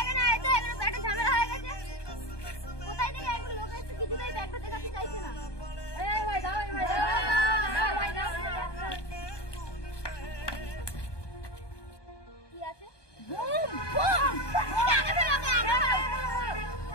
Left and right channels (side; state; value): right; late; 1.2 ms